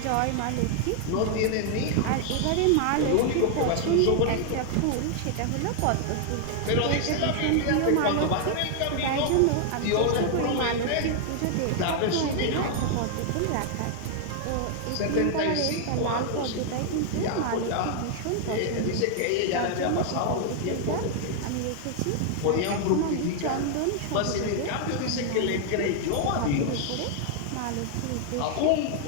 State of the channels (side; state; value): both; different; correlation 0.00